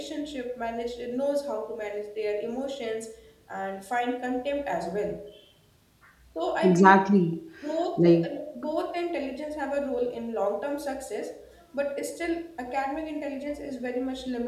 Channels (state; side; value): identical; both; correlation 1.00